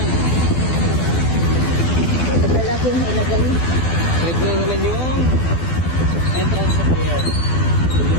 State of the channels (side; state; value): right; late; 12 ms